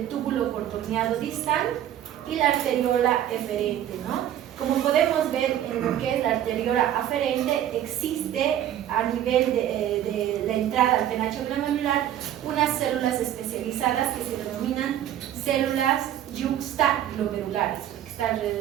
túbulo contorneado distal y la arteriola eferente, ¿no? Como podemos ver en lo que es la arteriola aferente, existe a nivel de la entrada al penacho glomerular unas células especializadas que se denominan células yuxtaglomerulares, que está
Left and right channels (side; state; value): left; quieter; 11.4 dB